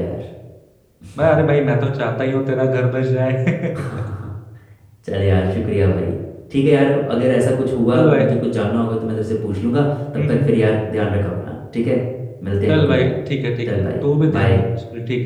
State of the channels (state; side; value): identical; both; correlation 1.00